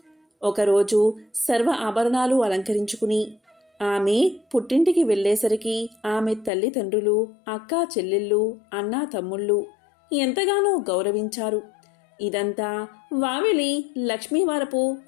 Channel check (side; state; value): right; drops out; at 6.5 s